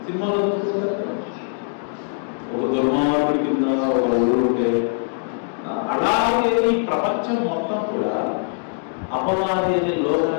సినిమాలో చూసుకుంటారు ఒక దుర్మార్గుడి కింద ఒక ఊరు ఉంటే, అలాగే ఈ ప్రపంచం మొత్తం కూడా అపవాది అనే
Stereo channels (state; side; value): silent; right; 64 dB below the other